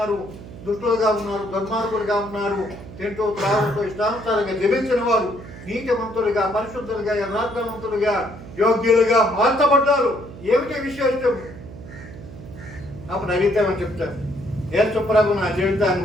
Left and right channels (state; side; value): noise; right; hum, 15 dB below the sound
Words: దుష్టులుగా ఉన్నారు, దుర్మార్గులుగా ఉన్నారు, తింటూ త్రాగుతూ ఇష్టానుసారంగా జీవించిన వారు నీతిమంతులుగా, పరిశుద్ధులుగా, యథార్థవంతులుగా, యోగ్యులుగా మార్చబడ్డారు. ఏమిటి విశేషం? అప్పుడు అడిగితేమని చెప్తారు, యేసు ప్రభు నా జీవితాన్ని